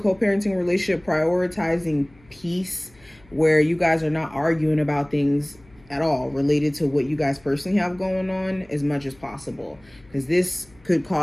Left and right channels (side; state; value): left; noise; hum, 28 dB below the sound